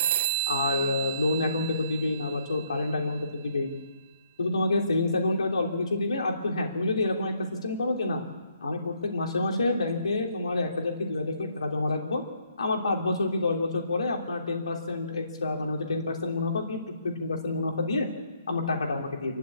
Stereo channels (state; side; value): inverted; both; correlation -0.70